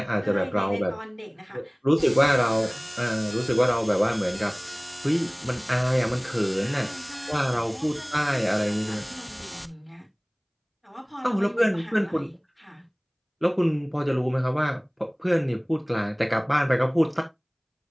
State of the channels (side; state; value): both; identical; correlation 1.00